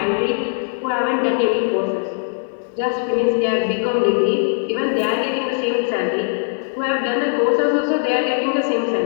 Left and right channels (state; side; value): silent; right; 66 dB below the other